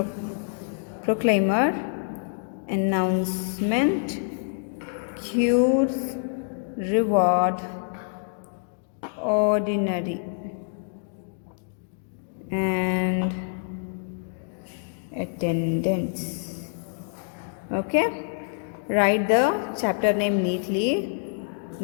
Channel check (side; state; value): right; silent; digital silence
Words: proclaimer, announcement, cures, reward, ordinary, and attendance. Okay, write the chapter name neatly,